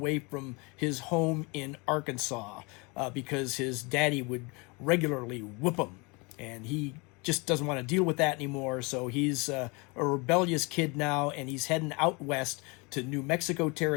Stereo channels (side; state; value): right; quieter; 28.5 dB